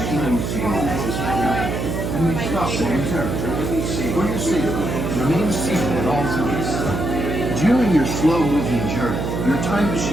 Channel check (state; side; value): noise; right; hum, 2 dB below the sound